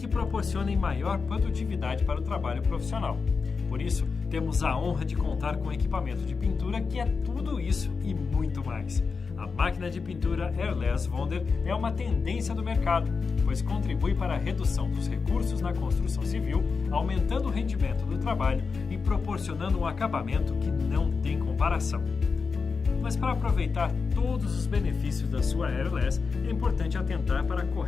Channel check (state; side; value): quieter; right; 4.9 dB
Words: proporcionem maior produtividade para o trabalho profissional. Por isso, temos a honra de contar com equipamento de pintura que é tudo isso e muito mais. A máquina de pintura Airless Wonder é uma tendência do mercado, pois contribui para a redução dos recursos na construção civil, aumentando o rendimento do trabalho e proporcionando um acabamento que não tem comparação. Mas para aproveitar todos os benefícios da sua Airless, é importante atentar para a